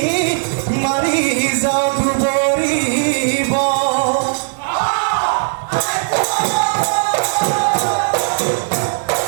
মাৰি যাওঁ দুবৰিব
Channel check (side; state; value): left; silent; digital silence